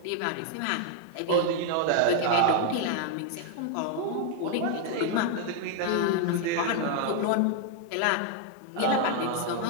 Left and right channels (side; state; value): both; different; correlation 0.00